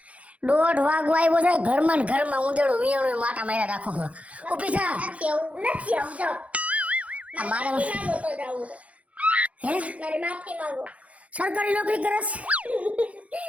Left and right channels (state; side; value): late; left; 0.065 ms